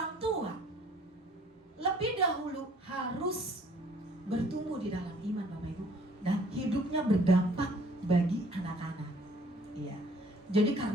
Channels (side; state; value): both; normal; correlation 0.57